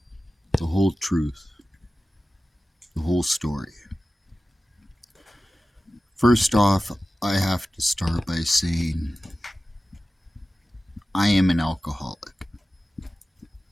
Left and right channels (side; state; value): both; normal; correlation 0.95